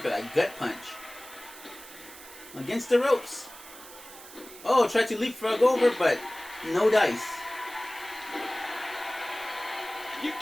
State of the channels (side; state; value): right; noise; hiss, 17 dB below the sound